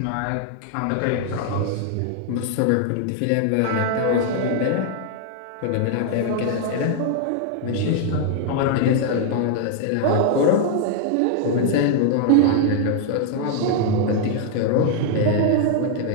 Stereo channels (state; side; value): different; both; correlation 0.00